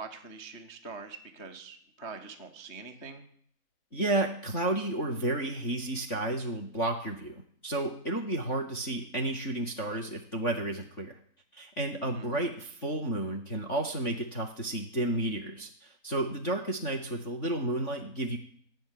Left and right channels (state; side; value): late; right; 3.5 ms